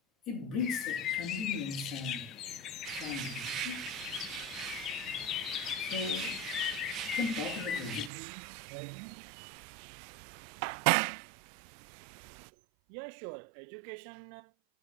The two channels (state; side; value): drops out; left; at 8.1 s